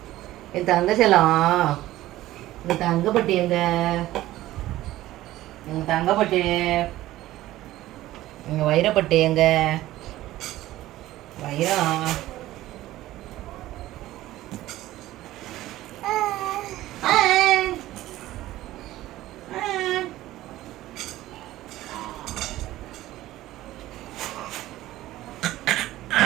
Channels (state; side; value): quieter; left; 15.6 dB